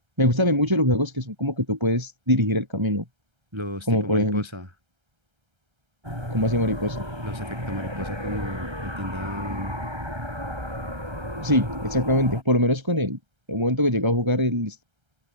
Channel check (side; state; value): left; late; 1.3 ms